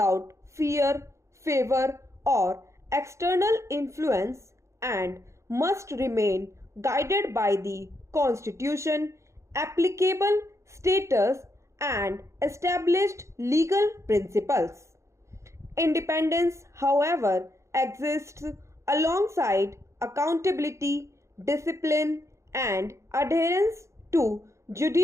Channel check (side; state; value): left; late; 0.14 ms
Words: fear, favor, or external influence and must remain guided by the Constitution, applicable status, and established legal principles. Independence, however, exists alongside accountability, discipline, and adherence to